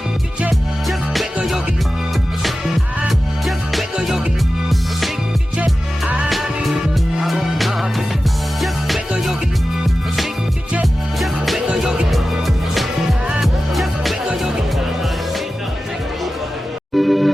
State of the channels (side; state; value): both; normal; correlation 0.94